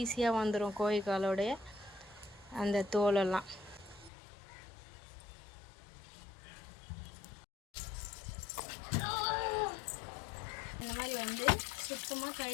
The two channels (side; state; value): right; drops out; at 4.1 s